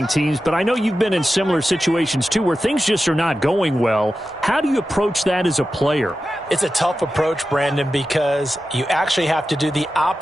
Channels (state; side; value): normal; both; correlation 0.92